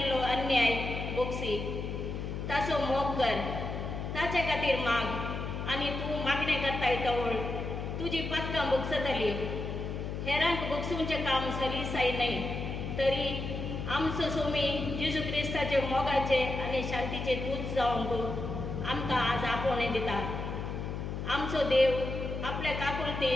अन्याय बोगसी ताचो मोग कर. ताचे खातीर माग आनी तूं मागणें करताय तवळ तुजी पातकां भोगसतली. हेरांक भोगसूंचें काम सलीसाय न्हय तरी आमचो सोमी जेजू क्रिस्ताचे मोगाचे आनी शांतीचे दूत जावंक आमकां आज आपोवणें दिता. आमचो देव आपल्या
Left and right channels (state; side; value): noise; left; hum, 4 dB below the sound